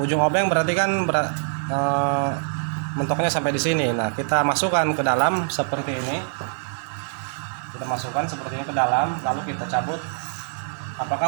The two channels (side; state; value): left; silent; 56 dB below the other